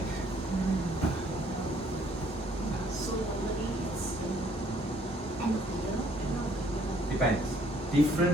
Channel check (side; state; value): both; normal; correlation 0.63